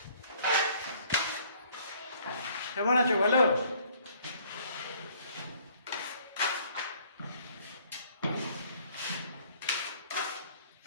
কেমন আছো? ভালো?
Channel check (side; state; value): both; inverted; correlation -0.59